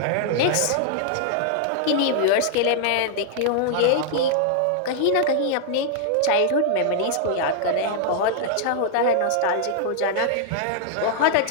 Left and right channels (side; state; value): both; different; correlation -0.01